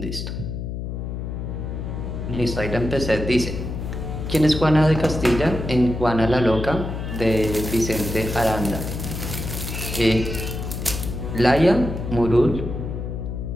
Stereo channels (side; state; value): left; noise; hum, 5 dB below the sound